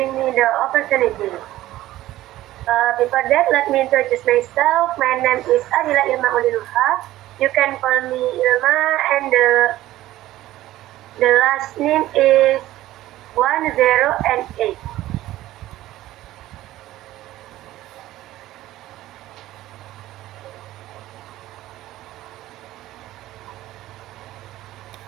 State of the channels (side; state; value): left; quieter; 15.3 dB